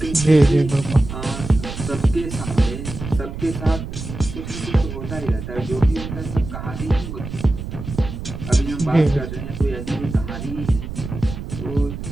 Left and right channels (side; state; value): right; noise; rumble, 8 dB below the sound